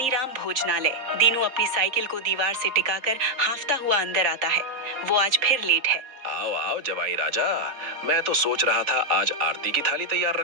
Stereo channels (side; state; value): left; late; 3.8 ms